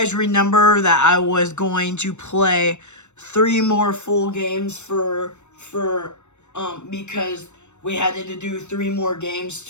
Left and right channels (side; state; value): right; late; 0.83 ms